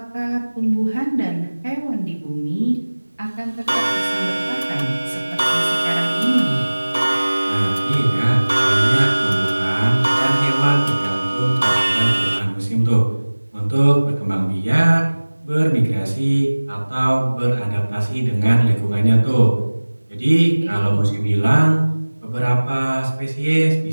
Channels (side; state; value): both; inverted; correlation -1.00